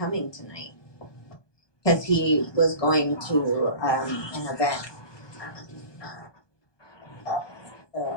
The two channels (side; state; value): right; late; 1.2 ms